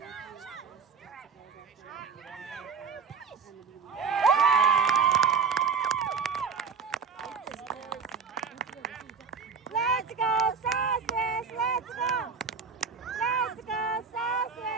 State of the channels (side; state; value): left; quieter; 5.5 dB